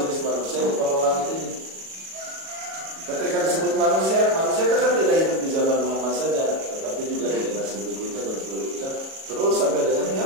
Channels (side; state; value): left; late; 37 ms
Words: manusia di langit ini. Ketika disebut manusia, manusia itu kan tidak hidup di zaman Muhammad saja, tetapi juga di generasi berikutnya dan seterusnya, terus sampai dengan